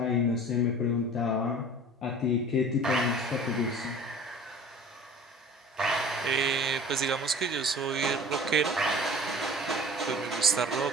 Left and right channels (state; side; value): normal; both; correlation 0.43